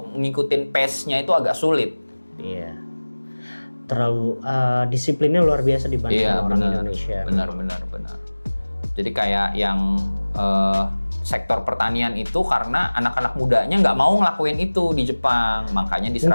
ngikutin pace-nya itu agak sulit. Iya. Terlalu disiplinnya luar biasa dibanding orang Indonesia. Benar. Jadi kayak yang sektor pertanian itu karena anak-anak mudanya nggak mau ngelakuin itu di Jepang, makanya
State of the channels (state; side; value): inverted; both; correlation -1.00